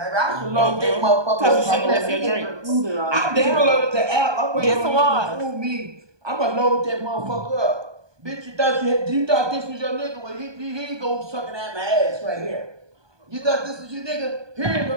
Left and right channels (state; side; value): late; left; 1.2 ms